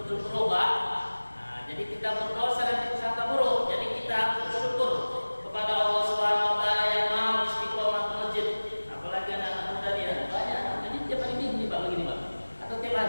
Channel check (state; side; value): inverted; both; correlation -1.00